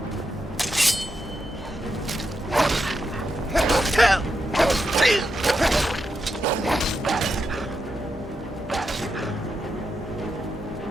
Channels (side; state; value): both; normal; correlation 0.85